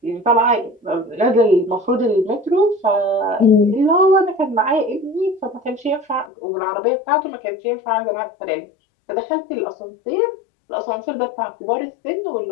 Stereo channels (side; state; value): right; drops out; at 6.3 s